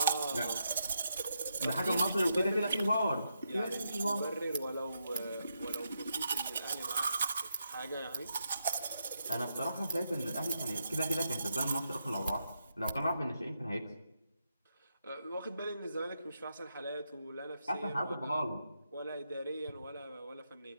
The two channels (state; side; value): inverted; both; correlation -0.83